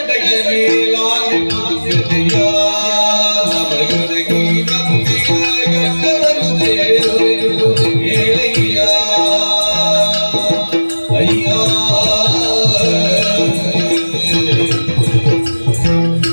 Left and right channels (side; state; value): both; inverted; correlation -1.00